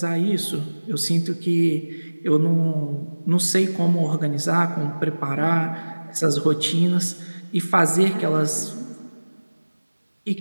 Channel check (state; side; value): inverted; both; correlation -1.00